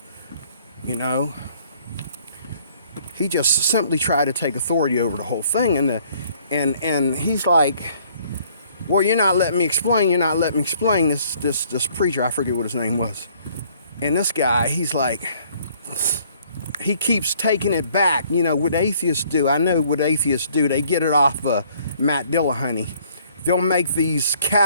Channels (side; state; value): both; inverted; correlation -0.61